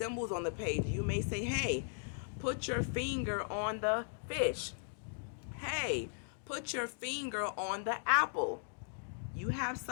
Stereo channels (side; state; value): right; silent; digital silence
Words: on the page. You may say, hey, put your finger on the fish. Hey, put your finger on the apple. You have